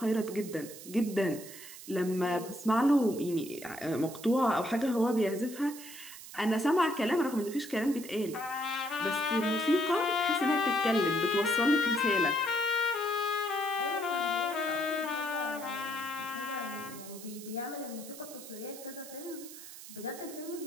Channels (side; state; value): right; noise; hiss, 14 dB below the sound